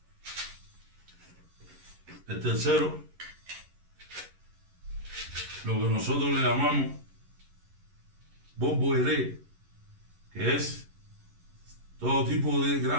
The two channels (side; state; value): left; late; 11 ms